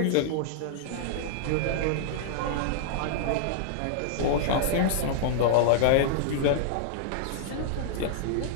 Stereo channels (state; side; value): different; both; correlation -0.01